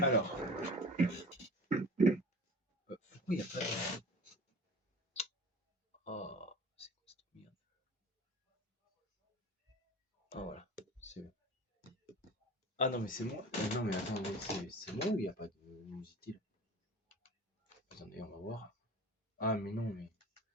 pourquoi il n'y a pas de. Oh, c'est quoi cette merde? Ah, voilà. C'est bon. Ah non, mais c'est moi. Non, mais attends, c'est moi ou il n'y a pas de luminosité là? Attendez, on va voir. Ah, mais non, mais.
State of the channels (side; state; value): both; normal; correlation 0.38